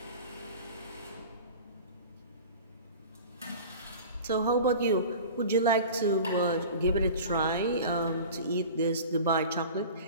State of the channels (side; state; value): both; inverted; correlation -0.38